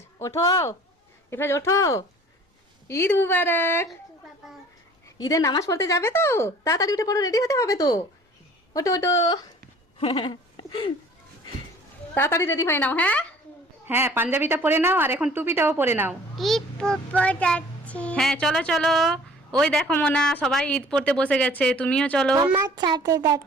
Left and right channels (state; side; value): normal; both; correlation 0.50